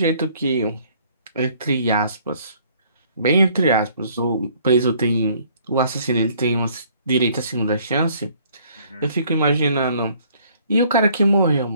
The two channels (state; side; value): inverted; both; correlation -0.60